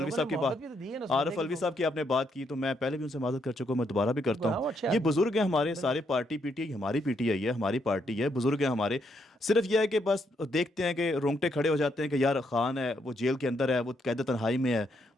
صاحب کی عارف الوی صاحب کی آپ نے بات کی, تو میں پہلے بھی ان سے معذرت کر چکا ہوں, میں دوبارہ بھی کرتا ہوں. یہ بزرگ ہیں ہمارے سارے, پارٹی پی ٹی آئی ہماری پی ٹی آئی ہے, ہماری پارٹی ہے, بزرگ ہیں ہمارے. صرف یہ ہے کہ بس دیکھتے ہیں کہ رونگٹے کھڑے ہو جاتے ہیں کہ یار خان ہے وہ جیل کے اندر ہے, وہ قید تنہائی میں ہے,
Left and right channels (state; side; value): normal; both; correlation 0.76